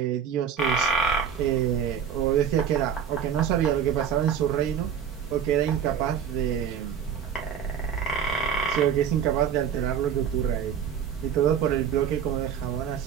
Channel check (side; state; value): left; quieter; 7.8 dB